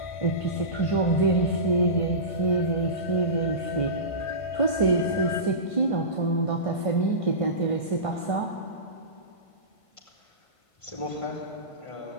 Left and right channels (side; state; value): right; late; 1.5 ms